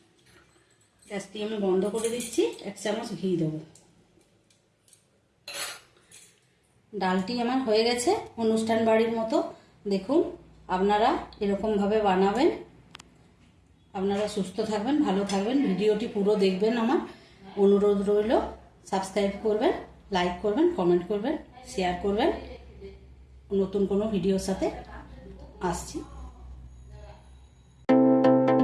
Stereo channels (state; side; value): identical; both; correlation 1.00